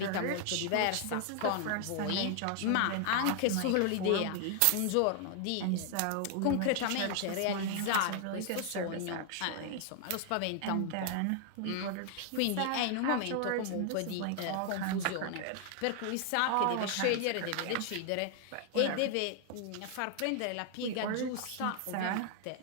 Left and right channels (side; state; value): both; different; correlation 0.00